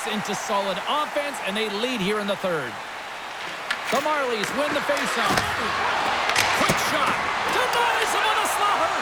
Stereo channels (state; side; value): identical; both; correlation 1.00